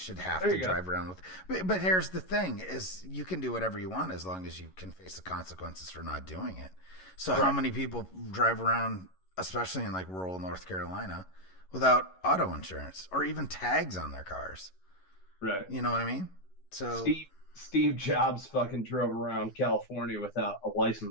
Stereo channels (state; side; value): late; right; 11 ms